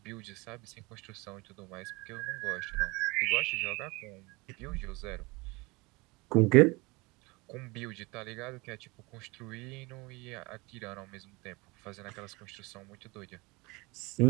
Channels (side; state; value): left; quieter; 25.1 dB